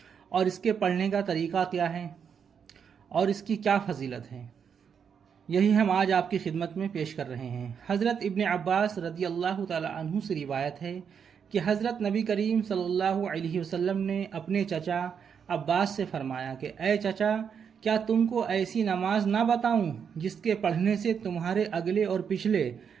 اور اس کے پڑھنے کا طریقہ کیا ہے اور اس کی کیا فضیلت ہے، یہی ہم آج آپ کی خدمت میں پیش کر رہے ہیں۔ حضرت ابن عباس رضی اللہ تعالی عنہ سے روایت ہے کہ حضرت نبی کریم صلی اللہ علیہ وسلم نے اپنے چچا عباس سے فرمایا کہ اے چچا، کیا تم کو ایسی نماز نہ بتاؤں جس کے پڑھنے سے تمہارے اگلے اور پچھلے،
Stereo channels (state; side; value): quieter; left; 7.1 dB